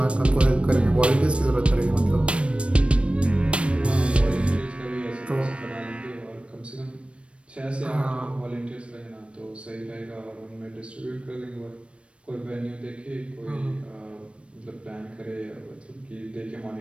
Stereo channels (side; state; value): left; late; 0.060 ms